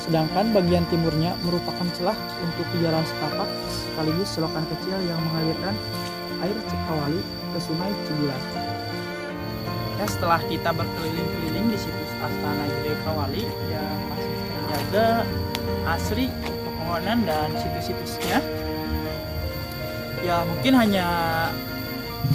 sedangkan bagian timurnya merupakan celah untuk jalan setapak sekaligus selokan kecil yang mengalirkan air Cikawali ke Sungai Cibulan. Ya, setelah kita berkeliling-keliling di situs Astana Gede Kawali yang masih terjaga asri pepohonan dan situs-situsnya, ya mungkin hanya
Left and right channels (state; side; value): identical; both; correlation 1.00